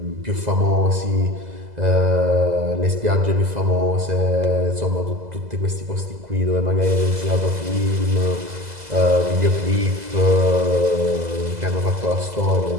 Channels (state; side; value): late; left; 2.0 ms